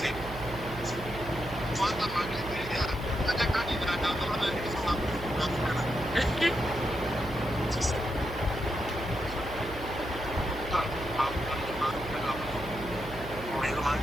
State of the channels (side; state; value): right; noise; hum, 11 dB below the sound